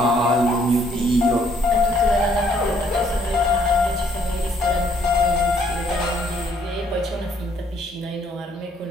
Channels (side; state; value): both; normal; correlation 0.66